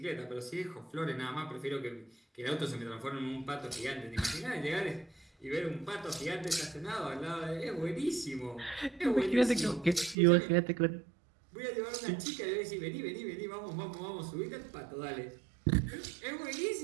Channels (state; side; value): drops out; left; at 10.2 s